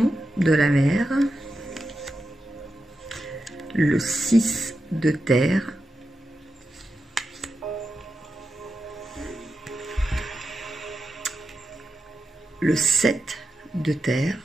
de la mer, le 6 de terre, le 7 de terre.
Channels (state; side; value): normal; both; correlation 0.89